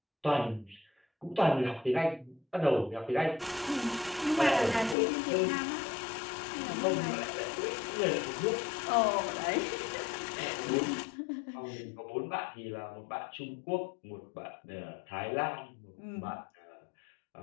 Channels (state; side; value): drops out; right; at 5.0 s